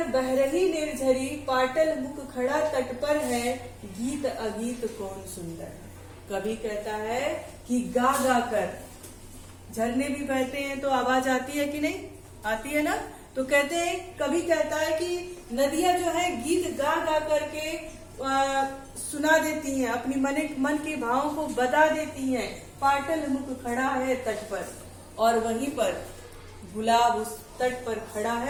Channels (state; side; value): identical; both; correlation 1.00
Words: बह रही निर्झरी, पाटल मुख खड़ा तट पर है, गीत अगीत कौन सुंदर है। कवि कहता है कि गा गा कर, झरने भी बहते हैं तो आवाज आती है कि नहीं, आती है ना। तो कहते हैं, कवि कहता है कि नदियां जो है गीत गा गा करके सुना देती हैं, अपनी मन के भावों को बता देती हैं। पाटल मुख खड़ा है तट पर, और वहीं पर गुलाब उस तट पर खड़ा